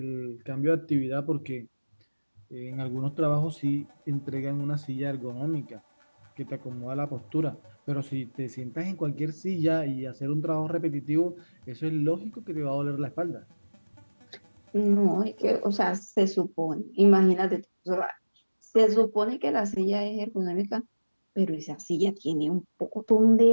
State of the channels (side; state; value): both; inverted; correlation -1.00